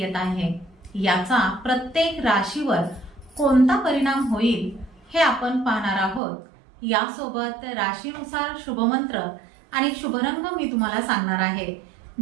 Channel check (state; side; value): drops out; left; at 6.2 s